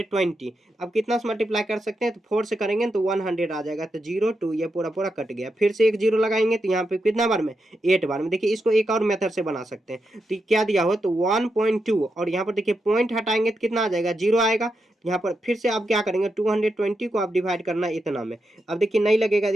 अब कितना से मल्टीप्लाई कर सकते हैं, तो 4 से करेंगे तो 100 आ जाएगा, तो 02 ये पूरा पूरा कट गया। फिर से एक जीरो लगाएंगे तो यहाँ पे कितना बार में 8 बार में। देखिए इसको एक और मेथड से बना सकते हैं, तो क्या दिया हो, तो 1.2 और यहाँ पर देखिए पॉइंट हटाएंगे तो कितना आ जाएगा, जीरो आएगा। यहाँ पर फिर से आप क्या करेंगे 220 को आप डिवाइड करना है इतना में। अब देखिए नहीं लगेगा,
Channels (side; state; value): both; normal; correlation 0.85